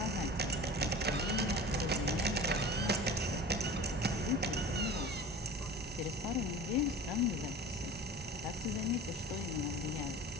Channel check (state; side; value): normal; both; correlation 0.37